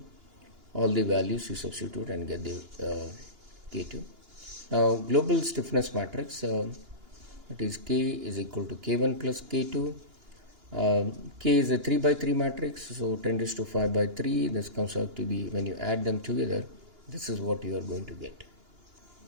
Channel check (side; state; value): left; late; 2.9 ms